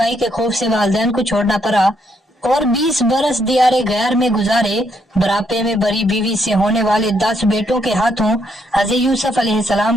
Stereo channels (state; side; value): normal; both; correlation 0.74